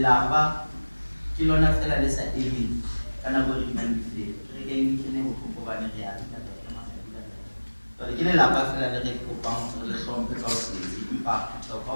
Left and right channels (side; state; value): both; inverted; correlation -1.00